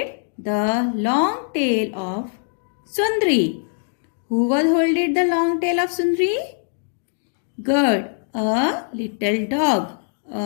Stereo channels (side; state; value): right; silent; digital silence